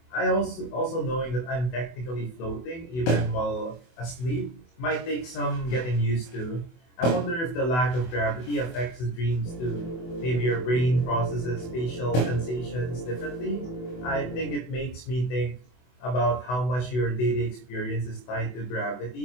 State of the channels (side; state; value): right; late; 24 ms